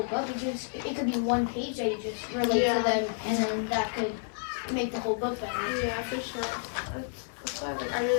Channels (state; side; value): silent; right; digital silence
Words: book. It could be one page that you just relate to them and then that could make the whole book better. Yeah, for sure. That's why like, I